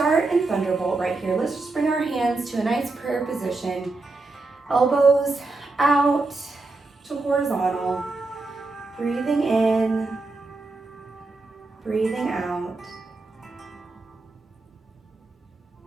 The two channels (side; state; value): left; quieter; 3.4 dB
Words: in thunderbolt right here. Let's just bring our hands to a nice prayer position. Elbows out to horizontal. Breathing in, breathing out.